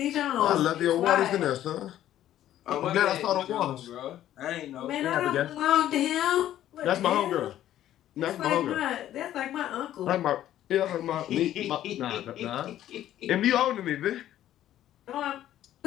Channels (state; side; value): quieter; right; 12.4 dB